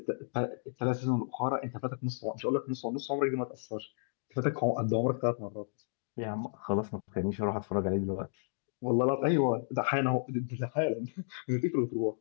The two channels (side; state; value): right; silent; digital silence